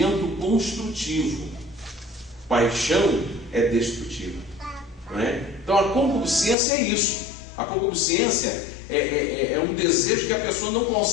construtivo, paixão é destrutiva, né? Então a concupiscência é isso. A concupiscência é um desejo que a pessoa não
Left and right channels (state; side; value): drops out; right; at 6.6 s